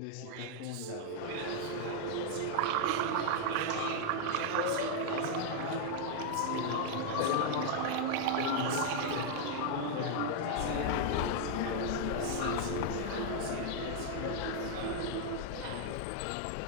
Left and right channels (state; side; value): different; both; correlation 0.00